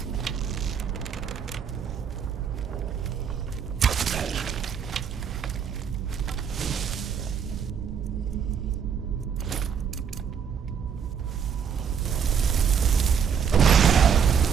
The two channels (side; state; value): left; quieter; 7.3 dB